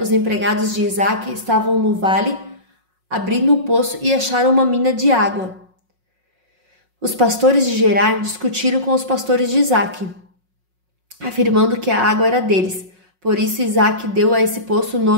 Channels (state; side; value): late; left; 5.5 ms